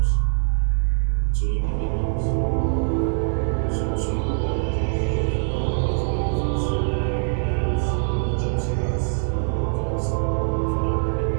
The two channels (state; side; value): silent; left; digital silence